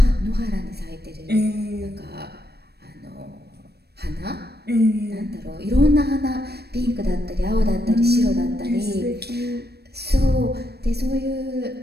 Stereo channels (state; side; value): late; left; 0.47 ms